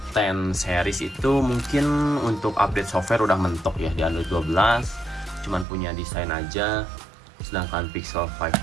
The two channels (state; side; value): drops out; left; at 5.7 s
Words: 10 series itu mungkin untuk update software udah mentok ya di Android 12, cuman punya desain aja. Sedangkan Pixel 5